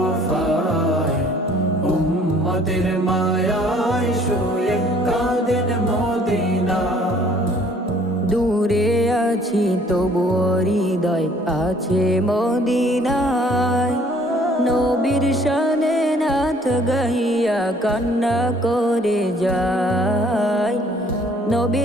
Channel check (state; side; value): normal; both; correlation 0.58